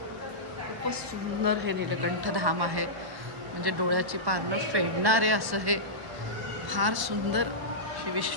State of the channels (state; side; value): late; left; 1.1 ms